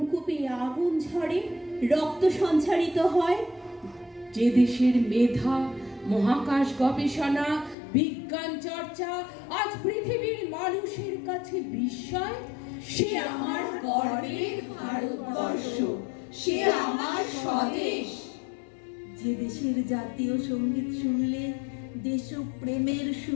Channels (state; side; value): drops out; right; at 7.8 s